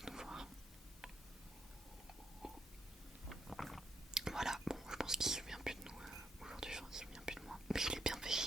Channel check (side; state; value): both; normal; correlation 0.74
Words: nous voir. Voilà, bon, je pense qu'il se souvient plus de nous aujourd'hui, enfin, il se souvient plus de moi. Mais je l'ai bien fait